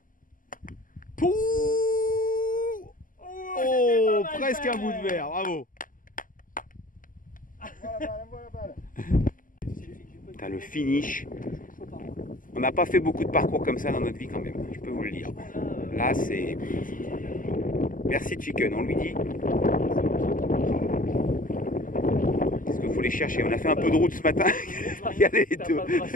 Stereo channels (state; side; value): late; right; 0.39 ms